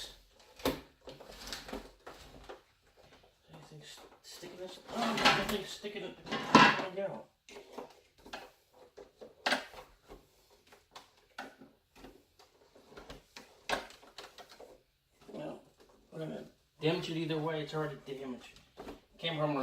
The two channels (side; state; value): both; identical; correlation 1.00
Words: Anything sticking this? Oh, nothing's sticking it down. Well, we're gonna damage it either way. It's already damaged. Came from a